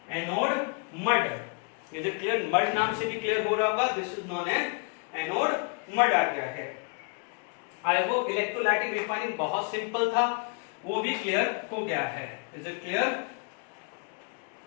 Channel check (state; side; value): quieter; right; 35.7 dB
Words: anode mud. Is it clear? Mud नाम से भी क्लियर हो रहा होगा, this is known as anode mud आ गया है। आई होप इलेक्ट्रोलाइटिक रिफाइनिंग बहुत सिंपल था, वो भी क्लियर हो गया है। Is it clear?